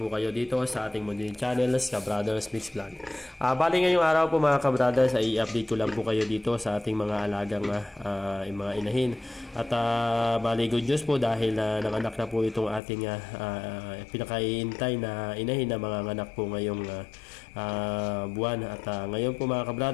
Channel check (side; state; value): right; drops out; at 12.8 s